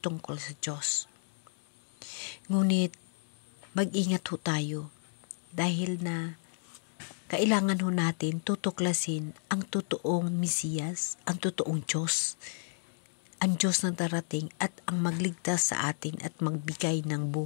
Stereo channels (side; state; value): right; silent; digital silence